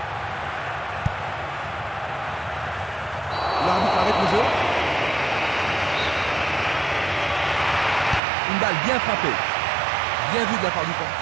L'arbitre arrête le jeu. Une balle bien frappée. Bien vue de la part du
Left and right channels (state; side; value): drops out; left; at 8.2 s